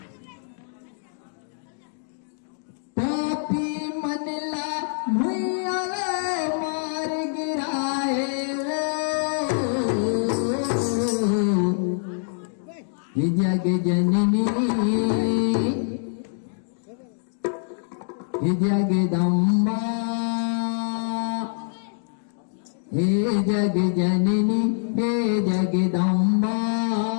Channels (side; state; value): right; silent; digital silence